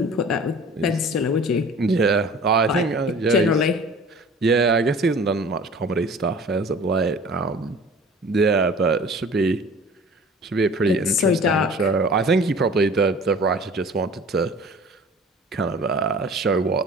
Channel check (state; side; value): normal; both; correlation 0.45